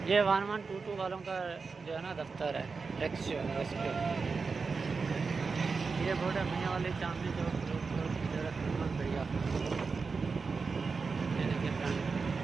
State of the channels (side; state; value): left; quieter; 4.7 dB